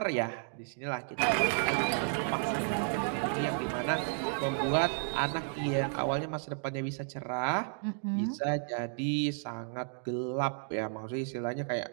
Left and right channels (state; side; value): silent; left; 56 dB below the other